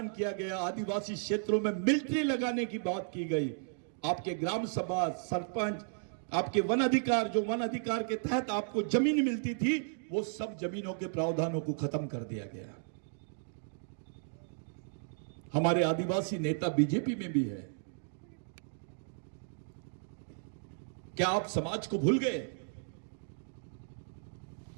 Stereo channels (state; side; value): silent; left; digital silence